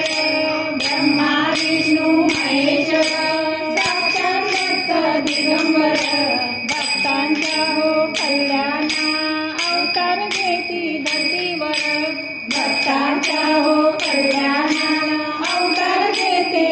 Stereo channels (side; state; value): both; identical; correlation 1.00